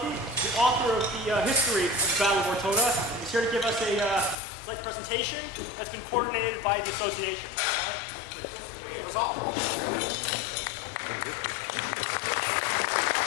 the author of the history of the Battle of Ortona, is here to give us a slight presentation that's been coordinated by the association.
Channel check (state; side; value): drops out; right; at 4.4 s